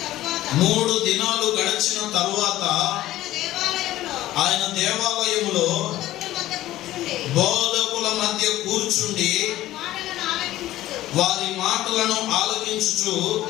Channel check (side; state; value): right; quieter; 15.1 dB